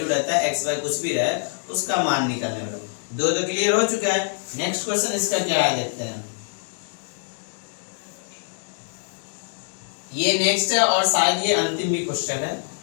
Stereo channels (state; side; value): silent; right; digital silence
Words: रहता है, एक्स वाई कुछ भी रहे उसका मान निकालने वाला। 2 तो क्लियर हो चुका है। नेक्स्ट क्वेश्चन इसका क्या है देखते हैं। ये नेक्स्ट है और शायद ये अंतिम भी क्वेश्चन है।